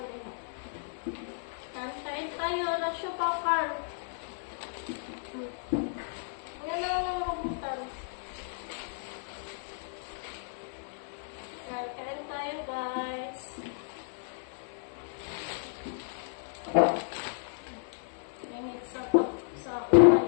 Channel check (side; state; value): right; silent; 56 dB below the other